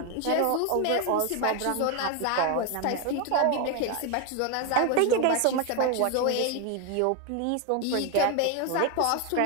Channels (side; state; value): both; different; correlation 0.01